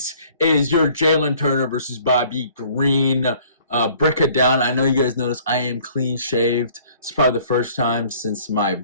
is your Jalin Turner versus Bobby Green. Break it down. I know you guys noticed I am clean shaved. It's probably the first time since my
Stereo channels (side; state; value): both; inverted; correlation -0.56